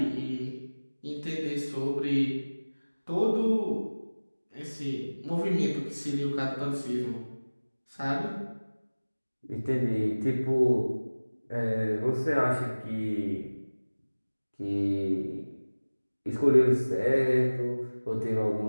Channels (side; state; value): both; inverted; correlation -1.00